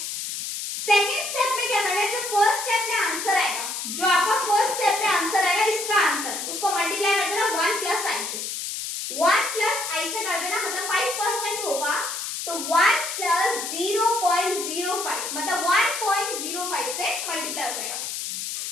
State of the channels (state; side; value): noise; left; hiss, 5 dB below the sound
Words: सेकंड स्टेप में क्या करना है, जो फर्स्ट स्टेप में आंसर आएगा, जो आपका फर्स्ट स्टेप में आंसर आएगा, इसका आंसर उसको मल्टीप्लाई कर देना 1 प्लस आई से, 1 प्लस आई से कर देना, मतलब 5% होगा तो 1 प्लस 0.05 मतलब 1.05 से मल्टीप्लाई हो जाएगा।